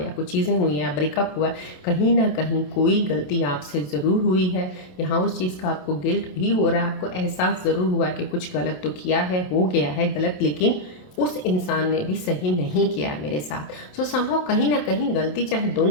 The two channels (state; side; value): late; right; 27 ms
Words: या कुछ चीज़ें हुई हैं, ब्रेकअप हुआ है, कहीं ना कहीं कोई गलती आपसे ज़रूर हुई है। यहाँ उस चीज़ का आपको गिल्ट भी हो रहा है, आपको एहसास ज़रूर हुआ है कि कुछ गलत तो किया है, हो गया है गलत, लेकिन उस इंसान ने भी सही नहीं किया है मेरे साथ। सो संभव कहीं ना कहीं गलती चाहे